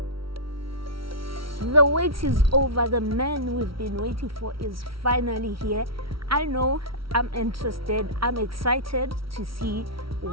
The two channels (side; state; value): left; late; 0.75 ms